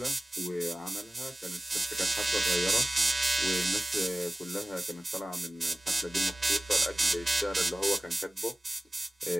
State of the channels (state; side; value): normal; both; correlation 0.96